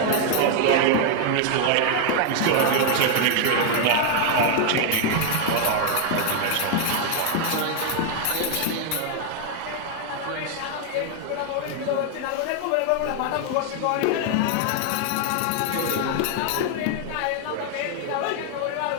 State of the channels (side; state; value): both; different; correlation 0.01